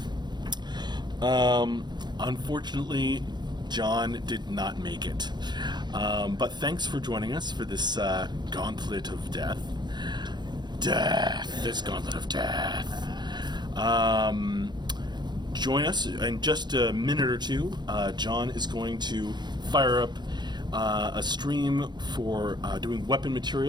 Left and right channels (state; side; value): late; left; 0.21 ms